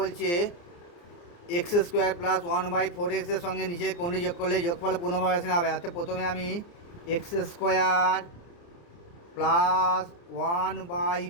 এক্স স্কোয়ার প্লাস 1/4 এক্সের সঙ্গে নিচের কোনটি যোগ করলে যোগফল পূর্ণবর্গ সংখ্যা হবে। অর্থাৎ প্রথমে আমি এক্স স্কোয়ার প্লাস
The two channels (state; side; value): late; right; 29 ms